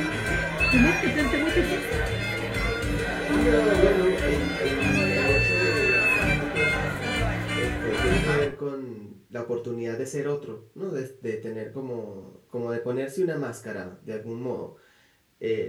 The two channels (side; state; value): both; identical; correlation 1.00